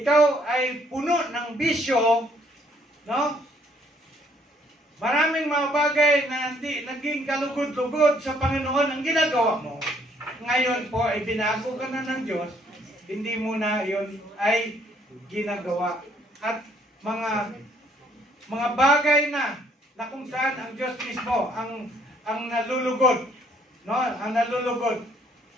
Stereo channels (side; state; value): both; normal; correlation 0.65